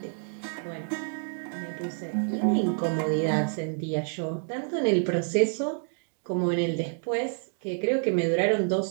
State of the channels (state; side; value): silent; left; 59 dB below the other